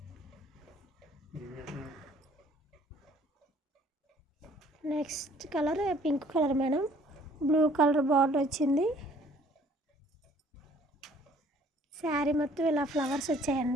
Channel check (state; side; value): normal; both; correlation 0.57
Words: Next colour pink colour madam. Blue colour border వచ్చింది. శారీ మొత్తం ఇలా ఫ్లవర్స్